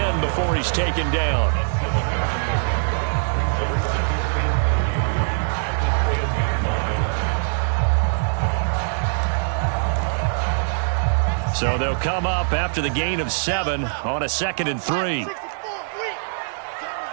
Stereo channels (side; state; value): left; silent; 64 dB below the other